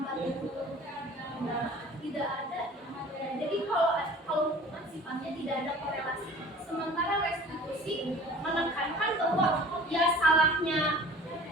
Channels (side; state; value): both; normal; correlation 0.45